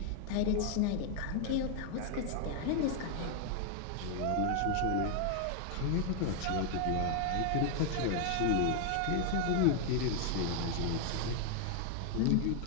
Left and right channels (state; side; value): different; both; correlation 0.00